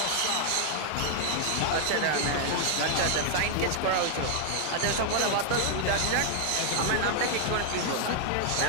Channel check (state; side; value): different; both; correlation 0.00